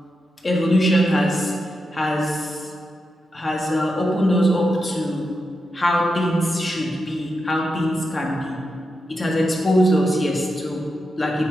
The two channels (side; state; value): both; normal; correlation 0.87